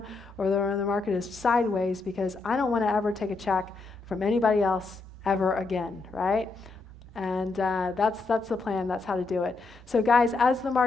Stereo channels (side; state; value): right; quieter; 3.8 dB